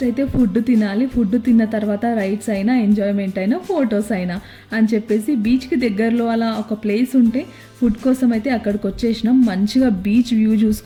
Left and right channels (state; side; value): identical; both; correlation 1.00